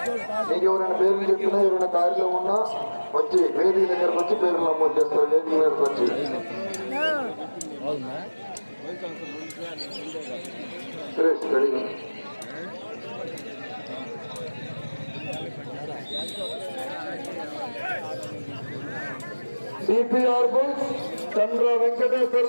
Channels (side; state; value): both; inverted; correlation -1.00